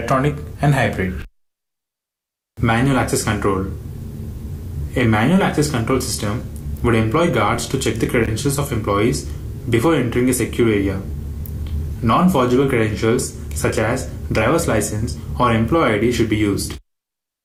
and hybrid. Manual access control. A manual access control system would employ guards to check the credentials of employees before entering a secure area. Non-forgeable credentials such as driver's license or employee ID should be used.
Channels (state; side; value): identical; both; correlation 1.00